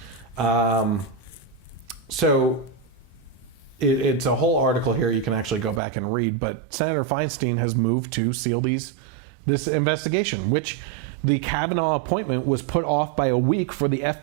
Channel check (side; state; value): left; drops out; at 5.8 s